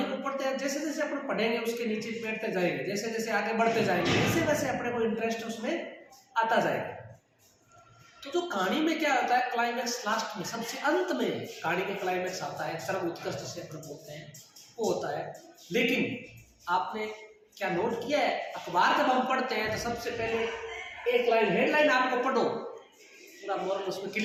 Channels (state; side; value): identical; both; correlation 1.00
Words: को पढ़ते हैं, जैसे जैसे अपन पढ़ेंगे उसके नीचे बैठते जाएंगे, जैसे जैसे आगे बढ़ते जाएंगे वैसे वैसे अपने को इंटरेस्ट उसमें आता जाएगा। तो जो कहानी में क्या होता है, क्लाइमैक्स लास्ट में, सबसे अंत में कहानी का क्लाइमैक्स आता है, चरम उत्कृष्ट से अपन बोलते हैं, वो होता है। लेकिन आपने क्या नोट किया है, अखबार जब हम पढ़ते हैं तो सबसे पहले एक लाइन हेडलाइन आपको पढ़ो, पूरा मोरल उसमें